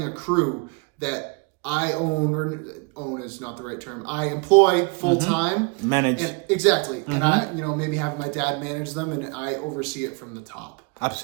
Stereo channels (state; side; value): quieter; left; 33.6 dB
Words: a crew that I own, or own is not the right term, I employ full time. Manage. And, exactly. And I, you know, maybe have my dad manage them and I oversee it from the top.